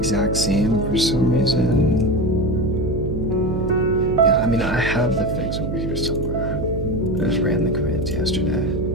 same for some reason. Yeah, I mean, I have the fix over here somewhere. I just ran the commands yesterday.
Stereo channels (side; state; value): right; noise; hum, 4 dB below the sound